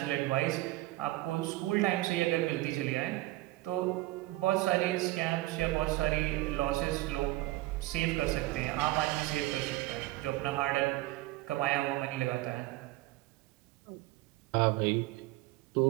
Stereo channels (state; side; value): quieter; left; 18.4 dB